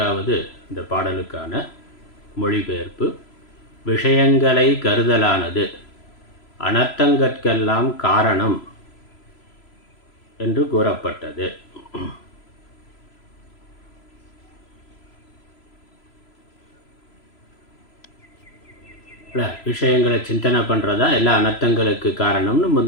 இந்த பாடலுக்கான மொழிபெயர்ப்பு. விஷயங்களை கருதலானது அனர்த்தங்கட்கெல்லாம் காரணம் என்று கூறப்பட்டது. விஷயங்களை சிந்தனை பண்ணுறதா எல்லா அனர்த்தங்களுக்கு காரணம்னு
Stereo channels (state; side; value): late; right; 3.0 ms